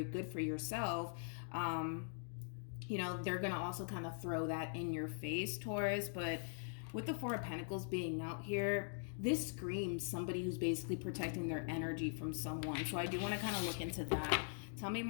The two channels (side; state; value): right; silent; digital silence